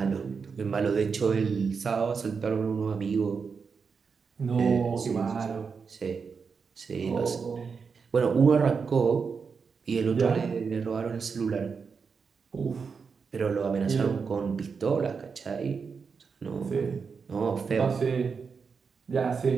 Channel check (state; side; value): quieter; left; 5.5 dB